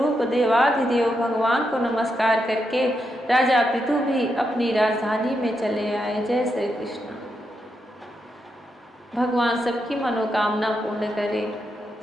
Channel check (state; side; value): normal; both; correlation 0.83